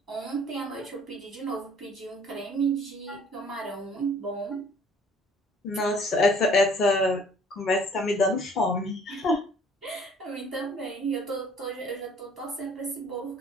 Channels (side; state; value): both; normal; correlation 0.55